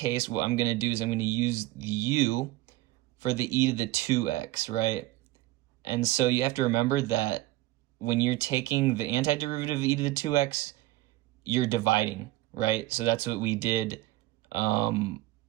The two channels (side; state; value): left; quieter; 17.7 dB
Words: what I'm going to do is I'm going to use the u for the e to the 2x, right? And so you have to remember that when you're taking the antiderivative of e to the 2x, you're dividing, right? So that's what we did